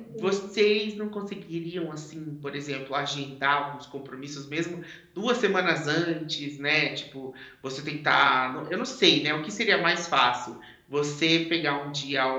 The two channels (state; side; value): identical; both; correlation 1.00